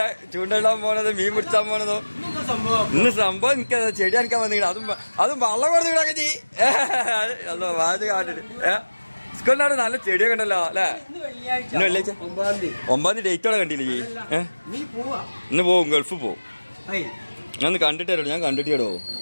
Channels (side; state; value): both; inverted; correlation -1.00